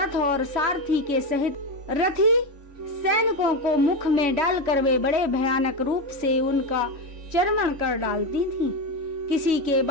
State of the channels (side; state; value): left; late; 3.1 ms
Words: और सारथी के सहित रथी सैनिकों को मुख में डालकर वे बड़े भयानक रूप से उनका चर्वण कर डालती थी। किसी के